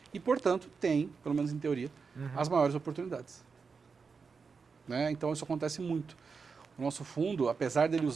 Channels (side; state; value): left; quieter; 5.2 dB